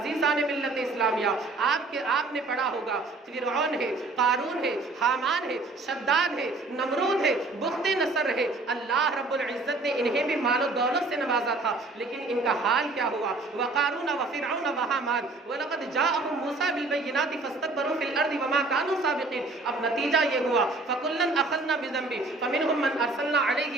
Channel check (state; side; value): quieter; left; 3.3 dB